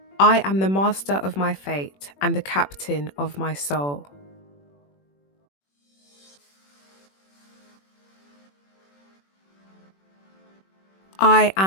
I am the master of my fate and the captain of my soul. I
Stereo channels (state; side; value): late; right; 21 ms